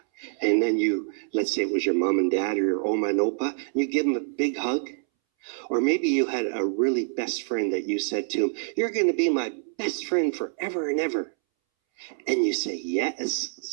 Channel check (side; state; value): left; silent; 61 dB below the other